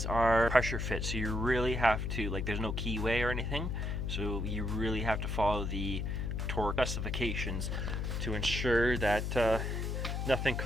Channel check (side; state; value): left; noise; hum, 1 dB below the sound